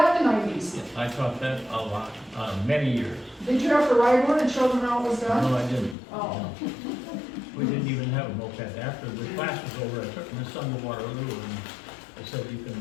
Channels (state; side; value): drops out; right; at 6.0 s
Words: in the 90s. I taught that a lot, many years. Did you have to ride one and show them how it was done? No, I didn't. Oh. No. We didn't even have a moped. After the class was over, I took my son to Waterloo and I said, you can